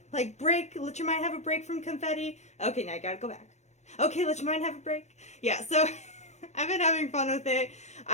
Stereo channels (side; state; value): right; late; 0.33 ms